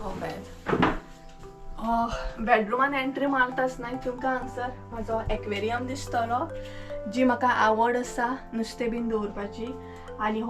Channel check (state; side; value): identical; both; correlation 1.00